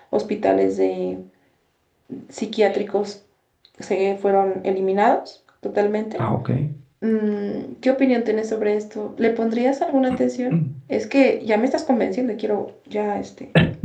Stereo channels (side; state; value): both; identical; correlation 1.00